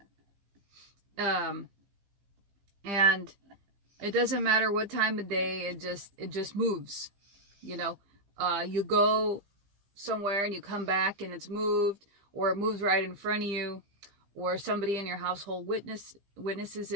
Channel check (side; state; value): left; late; 15 ms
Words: And it doesn't matter what time of day, it just moves. You know, you go somewhere and you come back and it's moved, or it moves right in front of you, or somebody in your household witnesses